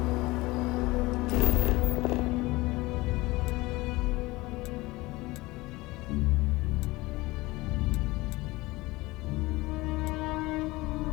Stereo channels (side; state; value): right; quieter; 21.0 dB